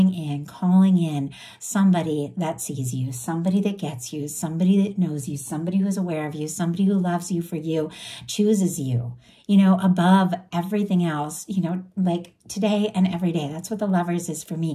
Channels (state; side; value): identical; both; correlation 1.00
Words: in, calling in somebody that sees you, somebody that gets you, somebody that knows you, somebody who's aware of you, somebody who loves you for you, chooses you, above everything else, like today and every day. That's what the Lovers is for